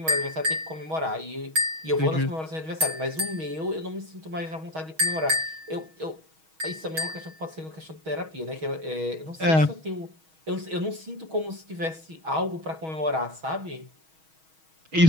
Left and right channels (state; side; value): late; left; 6.3 ms